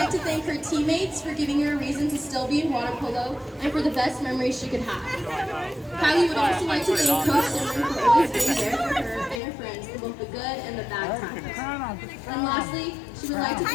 to thank her teammates for giving her a reason to still be in water polo and for the best memories she could have. Kylie would also like to thank Coach Simran for always being there for her and her friends for both the good and the bad times. And lastly, she would like to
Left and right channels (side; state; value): right; drops out; at 9.4 s